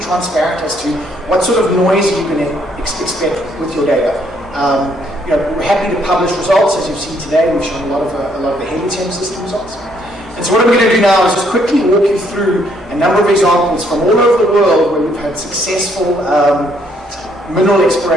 transparent as to what sort of noise you can expect with your data. We're happy to publish results. As you've seen today, we've shown a lot of the Helium system results. And so what I'm going to do now is just quickly walk you through a number of examples from all over the world where we've had successful mineral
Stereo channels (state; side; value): normal; both; correlation 0.69